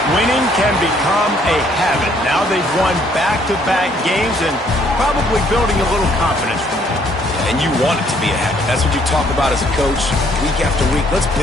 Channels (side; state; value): both; normal; correlation 0.65